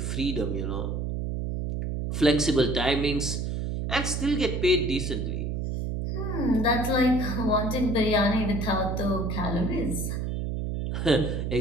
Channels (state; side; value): noise; right; hum, 2 dB below the sound